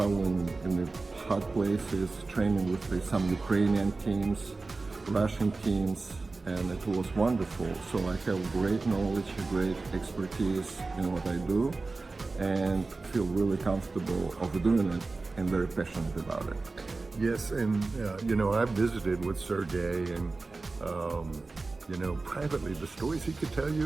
in the hot places, training with some Ukrainian teams, Russian teams, and it was wonderful. So I have great knowledge, great expertise in what I do, and feel really comfortable of doing it and very passionate about it. Yes, and I've visited with Sergei, and privately, the stories he could tell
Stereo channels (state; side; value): quieter; left; 3.6 dB